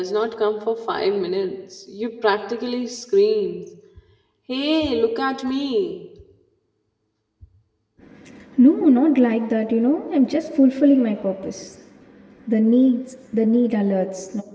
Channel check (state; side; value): identical; both; correlation 1.00